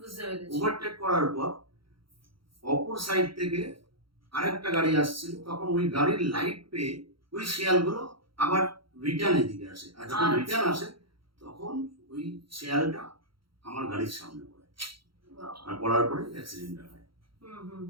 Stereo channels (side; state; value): left; late; 0.74 ms